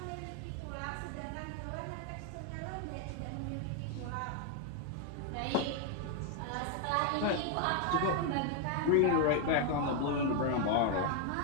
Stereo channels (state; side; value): different; both; correlation 0.01